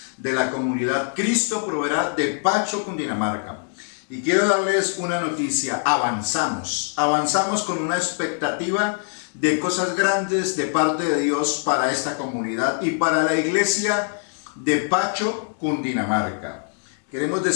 de la comunidad Cristo Proveerá de Pacho, Cundinamarca. Y quiero darles una noticia. Avanzamos con una expectativa de cosas grandes de parte de Dios para esta comunidad y para la iglesia de Pacho, Cundinamarca. Queremos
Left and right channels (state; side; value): silent; right; 63 dB below the other